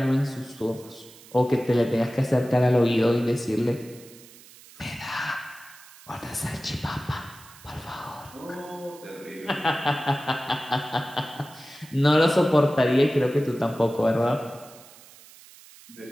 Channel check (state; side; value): noise; right; hiss, 22 dB below the sound